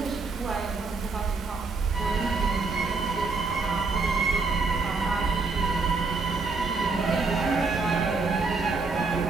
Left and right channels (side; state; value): left; quieter; 4.1 dB